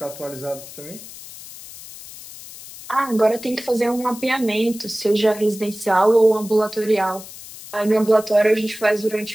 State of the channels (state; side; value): noise; left; hiss, 15 dB below the sound